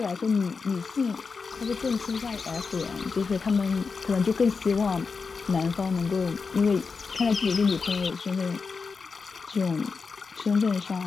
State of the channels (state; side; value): quieter; right; 4.9 dB